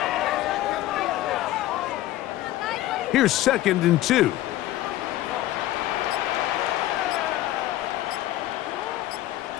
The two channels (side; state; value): right; quieter; 15.0 dB